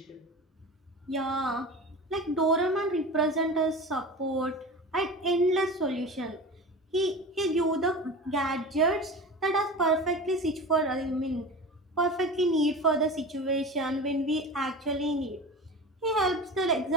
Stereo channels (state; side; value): normal; both; correlation 0.32